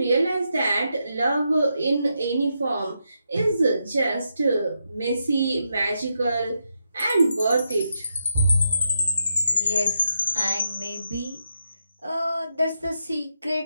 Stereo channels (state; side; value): inverted; both; correlation -0.83